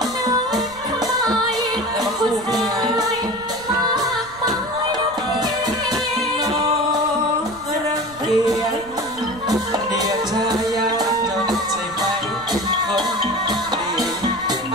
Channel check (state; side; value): noise; right; rumble, 20 dB below the sound